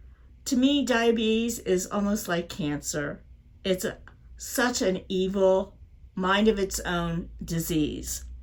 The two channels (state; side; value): identical; both; correlation 1.00